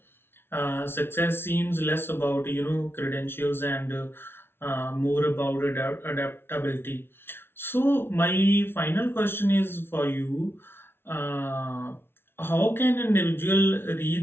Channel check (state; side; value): late; right; 0.11 ms